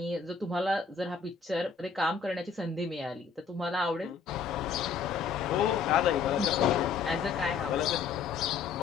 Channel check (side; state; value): right; quieter; 5.9 dB